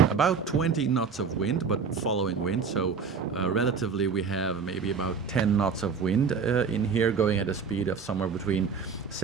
about 20 knots of wind, but following wind, so relatively we have maybe about 10 knots of wind in here, going at a speed of somewhere between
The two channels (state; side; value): quieter; left; 5.8 dB